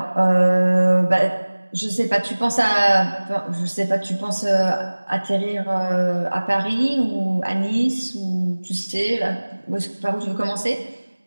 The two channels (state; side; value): inverted; both; correlation -1.00